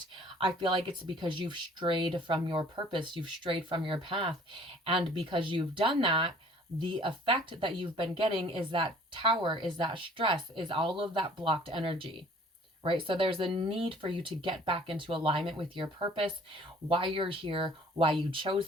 I feel like it's because you've strayed from your purpose, you've strayed from your path. And because you've done that, the effect that you've been getting is that tower, is that stress, is all of that blocked energy, right? So there's a need for you to get back into alignment with your purpose, why you're here, why you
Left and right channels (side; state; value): both; normal; correlation 0.53